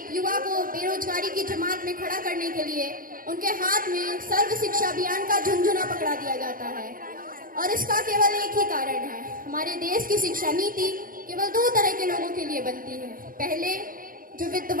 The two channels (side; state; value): left; late; 0.41 ms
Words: युवा को बेरोजगारी की जमात में खड़ा करने के लिए उनके हाथ में सर्व शिक्षा अभियान का झुंझुना पकड़ा दिया जाता है। और इसका केवल एक ही कारण है, हमारे देश की शिक्षा नीति केवल 2 तरह के लोगों के लिए बनती है, पहले जो